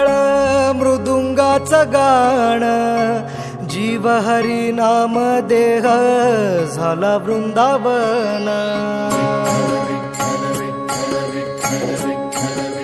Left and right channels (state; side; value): identical; both; correlation 1.00